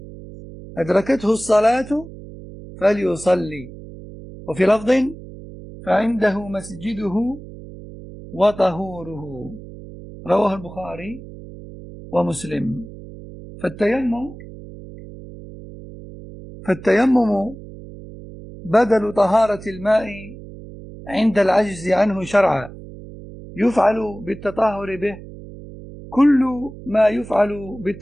أدركته الصلاة فليصلي وفي لفظ فعنده مسجده وطهوره رواه البخاري ومسلم. فالتيمم بدل طهارة الماء عند العجز عنه شرعا، يفعل بالتطهر به كل ما يفعل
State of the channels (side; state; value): right; noise; hum, 15 dB below the sound